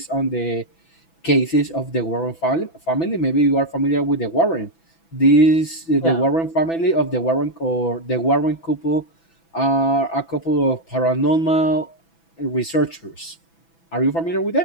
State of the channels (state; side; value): late; right; 6.0 ms